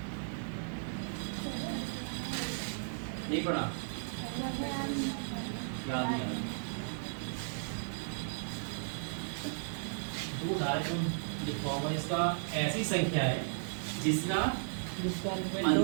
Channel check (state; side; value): silent; left; digital silence